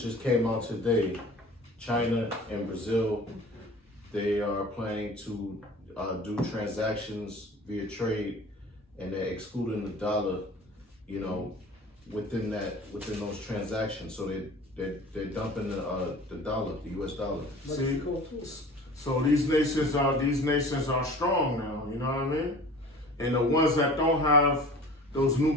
just came out today. China and Brazil, they are planning to do transactions via trade, and they're excluding the dollar, within those transactions. So they're dumping the dollar, the U.S. dollar. See, so these nations are strong now. You know what I mean? And the ones that don't have those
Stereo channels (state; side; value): normal; both; correlation 0.42